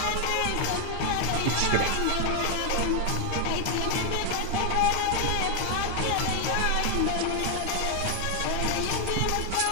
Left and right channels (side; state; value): both; different; correlation 0.00